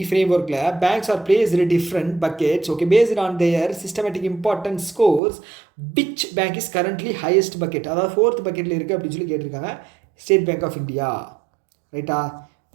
ஃப்ரேம்ஒர்க்கில் banks are placed different buckets. Okay, based on their systematic importance scores which bank is currently highest bucket, அதாவது 4th பக்கெட்டில் இருக்குது அப்படின்னு சொல்லி கேட்டிருக்காங்க. State Bank of India. ரைட்டா?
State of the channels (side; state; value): left; drops out; at 5.2 s